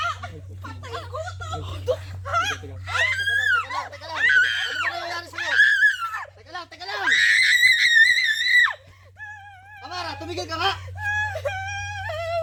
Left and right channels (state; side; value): identical; both; correlation 1.00